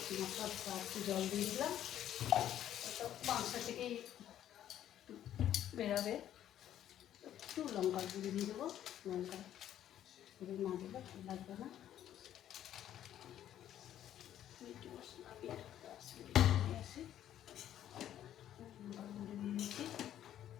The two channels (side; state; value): right; quieter; 11.3 dB